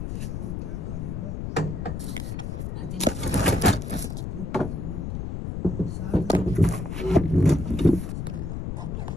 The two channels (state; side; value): noise; left; rumble, 4 dB below the sound